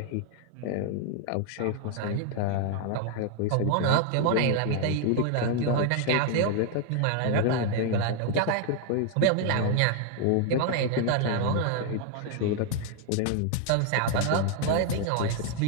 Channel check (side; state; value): both; different; correlation 0.00